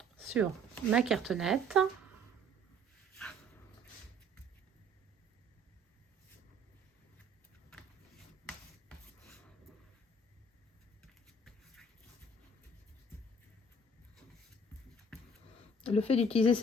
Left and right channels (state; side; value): normal; both; correlation 0.56